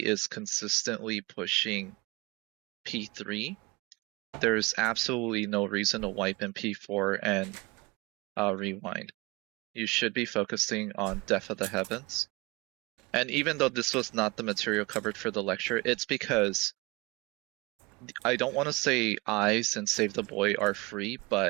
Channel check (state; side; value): quieter; left; 24.7 dB